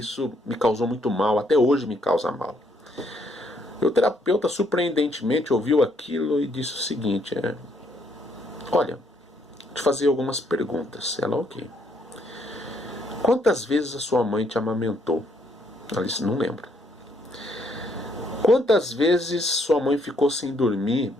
me causou muito mal, até hoje me causa mal. E o terapeuta surpreendentemente ouviu aquilo e disse o seguinte, olha, vou te fazer algumas perguntas. Ela, ok. Quantas vezes a sua mãe te amamentou? Ela disse, não lembro. Quantas vezes sua mãe ficou sem dormir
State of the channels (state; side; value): normal; both; correlation 0.71